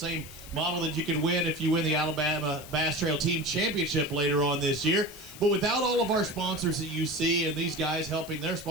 model that you can win if you win the Alabama Bass Trail Team Championship later on this year. But without all of our sponsors that you see and these guys helping their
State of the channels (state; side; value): noise; left; hiss, 16 dB below the sound